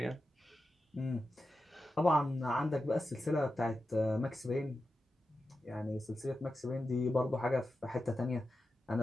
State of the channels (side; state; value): both; normal; correlation 0.91